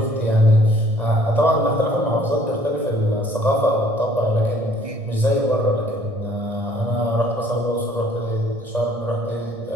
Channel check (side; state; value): left; late; 1.6 ms